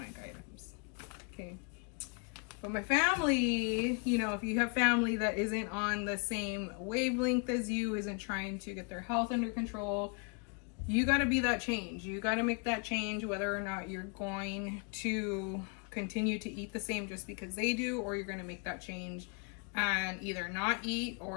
items, okay? But my family, you know, if you have family that isn't on the same wavelength as you, isn't trying to get their health under control, you got to be that change. You got to make that change whether or not you're going to continue to eat the same just because they do, or you're going to make that change and either not eat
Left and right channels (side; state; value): right; quieter; 36.4 dB